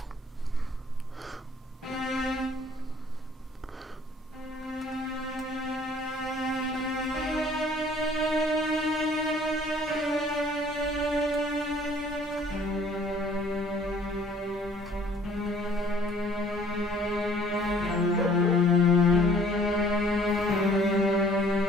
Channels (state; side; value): normal; both; correlation 0.57